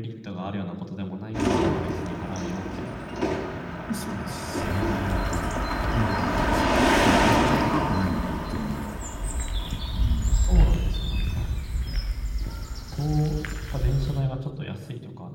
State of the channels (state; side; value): identical; both; correlation 1.00